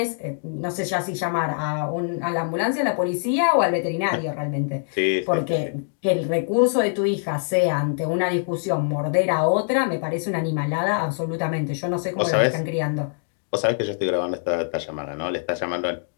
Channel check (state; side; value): silent; right; digital silence